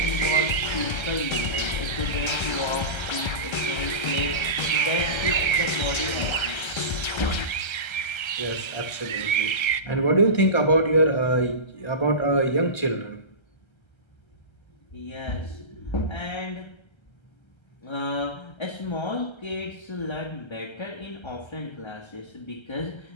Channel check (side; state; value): right; late; 1.3 ms